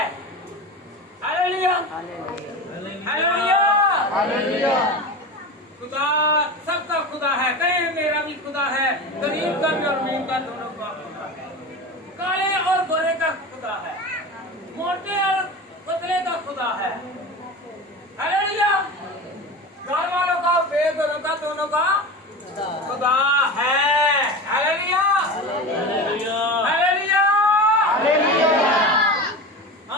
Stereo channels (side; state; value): both; normal; correlation 0.28